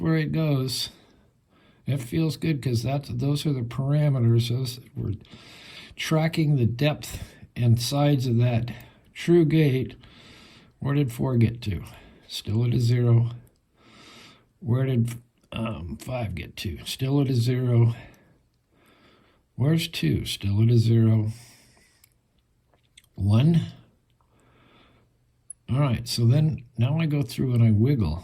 it goes. It feels good because those are the parameters. We're tracking the depth and sides of that true gate. Where did 4 get to? Still at a 0. Where did 5 get to? Still at a 0. Where's 2? Still at a 0. 1. All right, so then now I go through and I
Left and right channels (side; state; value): both; identical; correlation 1.00